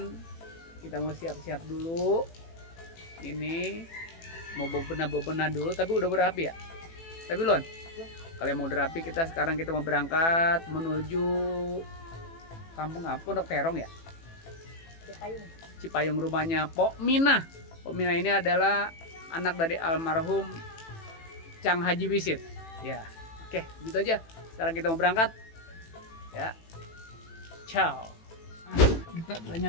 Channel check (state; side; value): late; right; 18 ms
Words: kita mau siap-siap dulu. Ini mau bebenah dulu, tapi udah berapi ya. Tapi Lon, kalau mau berapi kita mau berangkat menuju kampung apa? Pondok Terong ya? Cipayung rumahnya Pok Mina. Pok Mina ini adalah anak dari almarhum Cang Haji Wisit. Ya, oke, gitu aja. Sekarang kita mau berangkat. Ya, ciao. Kita udah